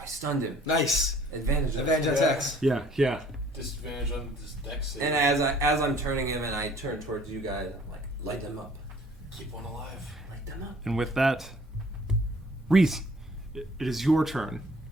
I stunned him. Nice. Advantage attacks. Yeah. Disadvantage on this dex save. And as I'm turning him, and I turn towards you guys, I'm like, light them up. Keep one alive. Light them up. And with that, Reese, it is your turn.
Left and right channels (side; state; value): both; normal; correlation 0.55